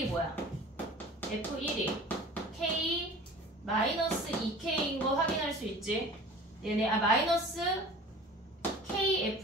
뭐야? f1이 k 마이너스 2k인 거 확인할 수 있지. 얘네 마이너스 k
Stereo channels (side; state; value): both; normal; correlation 0.42